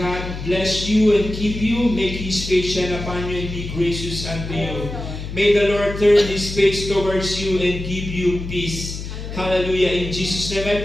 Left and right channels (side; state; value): left; noise; hum, 8 dB below the sound